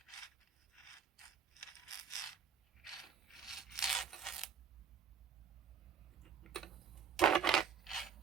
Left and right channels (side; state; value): left; quieter; 6.9 dB